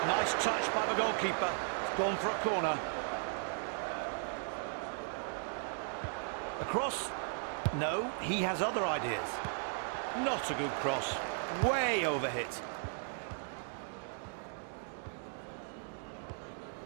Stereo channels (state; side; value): silent; left; 53 dB below the other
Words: Nice touch by the goalkeeper. It's gone for a corner. A cross? No, he has other ideas. Not a good cross. Way overhit.